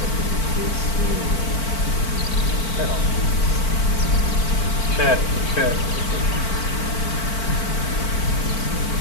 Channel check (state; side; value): late; right; 4.5 ms